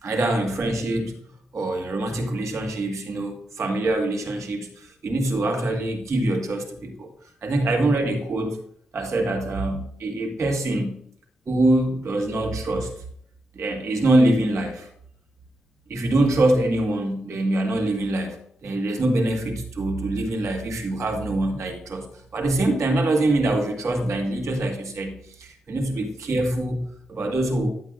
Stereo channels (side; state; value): both; normal; correlation 0.86